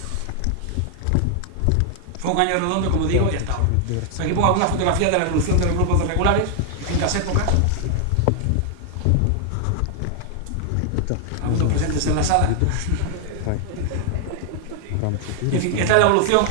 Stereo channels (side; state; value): both; different; correlation 0.00